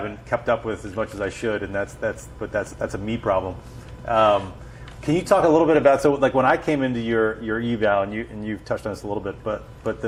kept up with as much as I should, and that's a me problem. Can you talk a little bit about, so like when I came into your eval, and you've touched on this a little bit, but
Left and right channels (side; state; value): both; identical; correlation 1.00